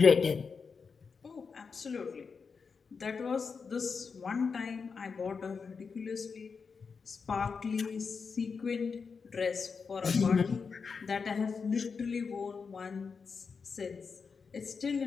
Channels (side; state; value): right; quieter; 5.4 dB